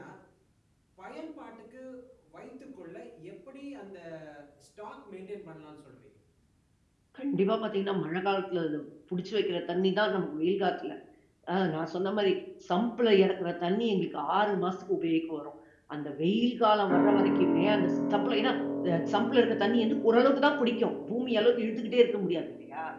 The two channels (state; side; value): identical; both; correlation 1.00